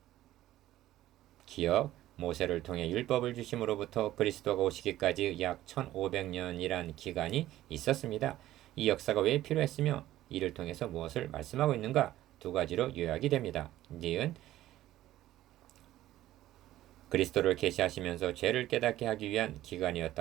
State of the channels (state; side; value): quieter; left; 14.4 dB